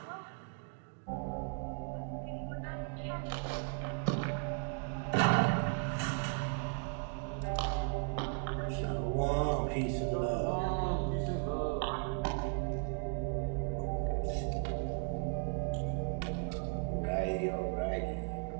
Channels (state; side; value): quieter; left; 38.9 dB